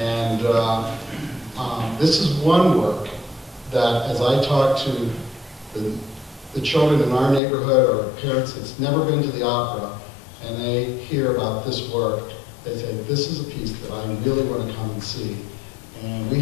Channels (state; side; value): drops out; right; at 7.4 s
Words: this is one work that, as I talk to the children in our neighborhood or parents that's never been to the opera, and they hear about this work, they say, this is a piece that I really want to come and see. And we